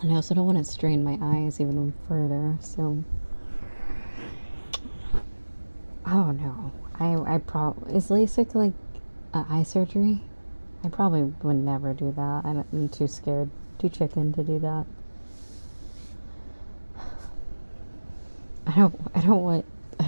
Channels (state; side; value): inverted; both; correlation -1.00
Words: And I also don't want to strain my eyes even further, so I don't know. I probably, is LASIK like eye surgery? I probably would never do that. I'm too scared, too chicken to do that. I don't